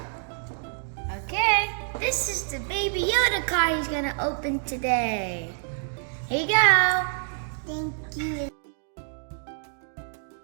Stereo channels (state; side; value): silent; left; 55 dB below the other